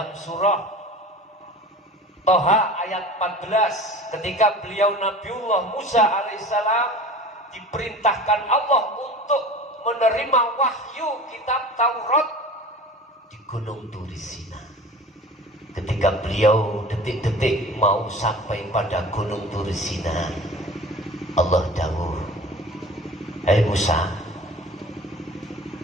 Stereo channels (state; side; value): normal; both; correlation 0.39